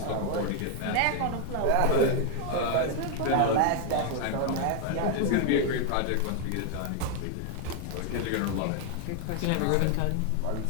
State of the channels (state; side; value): different; both; correlation 0.00